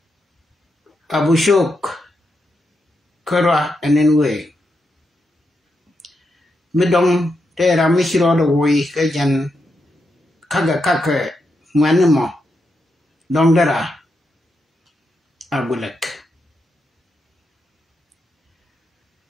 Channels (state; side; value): normal; both; correlation 0.84